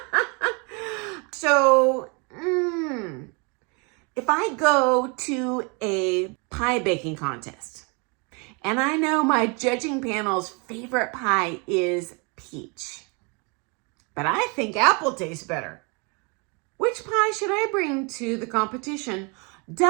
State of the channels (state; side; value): quieter; left; 32.6 dB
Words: So, if I go to a pie baking contest and I know my judging panel's favorite pie is peach, but I think apple tastes better, which pie should I bring to the competition?